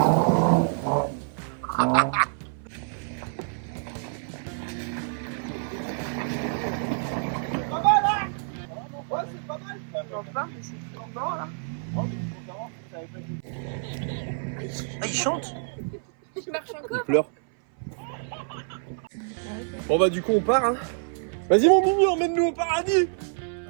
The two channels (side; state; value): left; silent; 57 dB below the other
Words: pas mal, hein? Ouais, c'est pas mal. Enfin, mais c'est encore là. Ah, il chante? Il marche encore. Il pleure. Bon, bah, du coup, on part, hein. Vas-y, mon Mimi, emmène-nous au paradis.